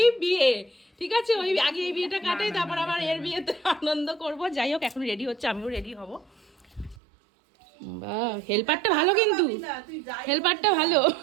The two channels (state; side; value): drops out; left; at 7.0 s